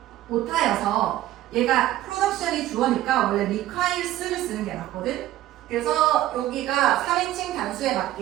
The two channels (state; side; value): quieter; left; 14.3 dB